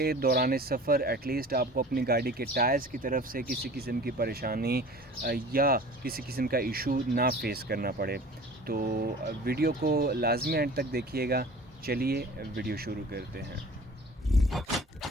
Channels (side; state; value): both; normal; correlation 0.43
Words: दौरान सफ़र एटलीस्ट आपको अपनी गाड़ी के टायर्स की तरफ से किसी किस्म की परेशानी या किसी किस्म का इशू ना फेस करना पड़े। तो वीडियो को लाजमी एंड तक देखिएगा। चलिए वीडियो शुरू करते हैं।